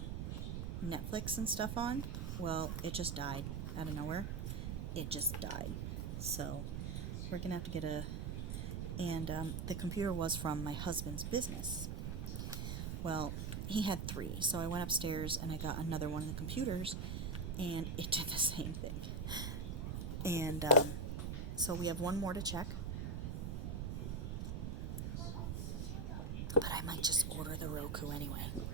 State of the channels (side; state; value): right; noise; rumble, 2 dB below the sound